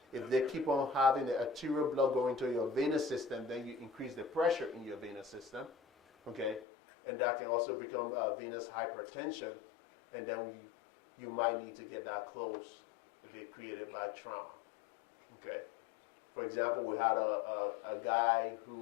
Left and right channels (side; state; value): right; drops out; at 6.7 s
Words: if they keep on having the arterial blood going to your venous system, then you increase the pressure in your venous system, okay? And that can also become venous hypertension. And then you might need to get that closed if it's created by trauma. Okay. For example, we had a guy